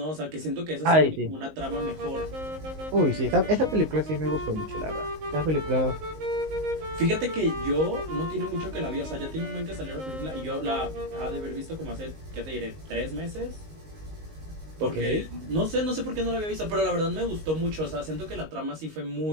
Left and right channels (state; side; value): late; left; 19 ms